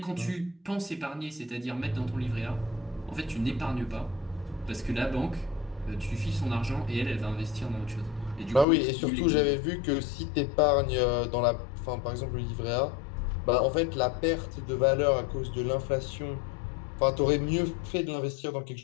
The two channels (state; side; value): drops out; right; at 8.7 s